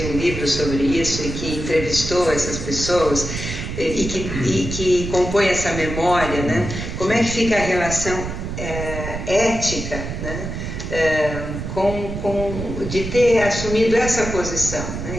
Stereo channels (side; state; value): right; noise; rumble, 6 dB below the sound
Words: um livro sobre isso e que entrevistou essas pessoas e que compõe essa memória, né? Como é que fica a relação ética, né? De ter assumido essa posição,